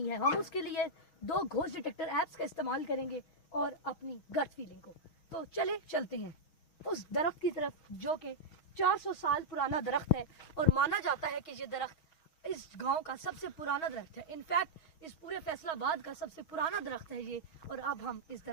है, हम उसके लिए 2 घोस्ट डिटेक्टर ऐप्स का इस्तेमाल करेंगे और अपनी गट फीलिंग को। तो चलते हैं उस दरख्त की तरफ जो कि 400 साल पुराना दरख्त है और माना जाता है कि ये दरख्त इस गांव का सबसे पुराना दरख्त है। इनफैक्ट इस पूरे फैसलाबाद का सबसे पुराना दरख्त है ये। और अब हम इस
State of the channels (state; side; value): late; right; 6.3 ms